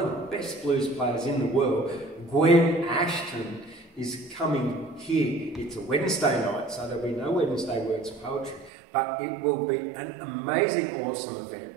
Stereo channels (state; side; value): drops out; left; at 8.7 s